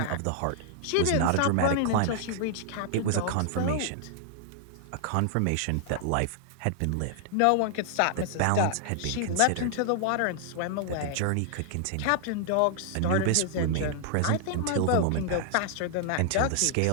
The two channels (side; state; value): both; different; correlation -0.01